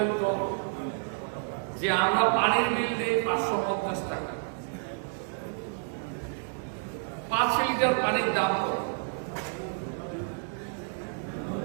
তো, যে আমরা পানির বিল দিই 550 টাকা, 5 লিটার পানির দাম কত?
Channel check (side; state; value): left; silent; digital silence